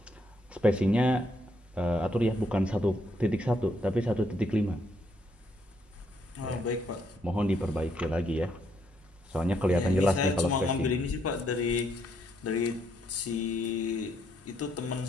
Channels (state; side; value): normal; both; correlation 0.73